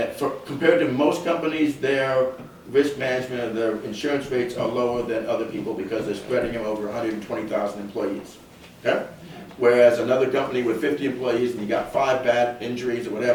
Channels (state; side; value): identical; both; correlation 1.00